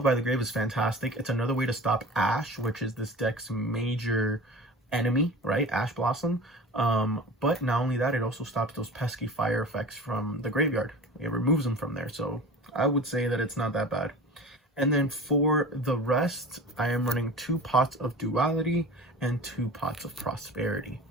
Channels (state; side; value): normal; both; correlation 0.37